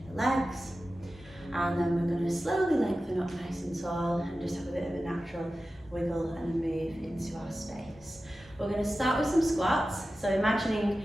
the legs. And then we're going to slowly lengthen up nice and tall and just have a bit of a natural wiggle and move into our space. We're going to start with some squats. So imagining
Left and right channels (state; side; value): normal; both; correlation 0.94